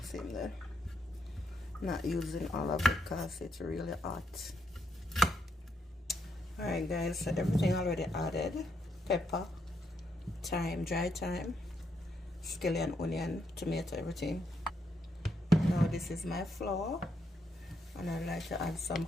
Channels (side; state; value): both; normal; correlation 0.77